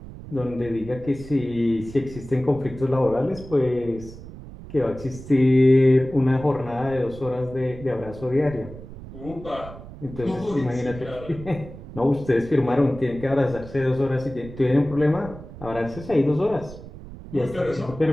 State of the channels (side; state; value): right; noise; rumble, 15 dB below the sound